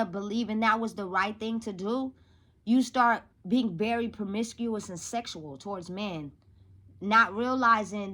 believing that was the right thing to do. You start being very promiscuous and sexual towards men, not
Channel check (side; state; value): both; identical; correlation 1.00